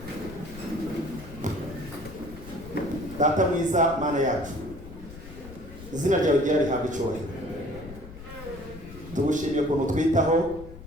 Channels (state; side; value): noise; left; rumble, 15 dB below the sound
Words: Data mwiza, Mana yacu, izina ryawe ryari rihabwa icyubahiro. Tugushimiye ukuntu twitaho,